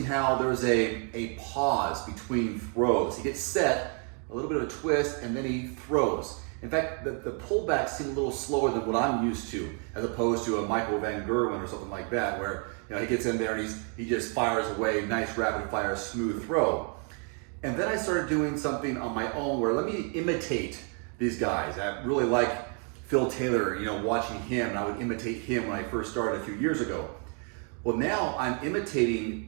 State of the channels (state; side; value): quieter; left; 40.0 dB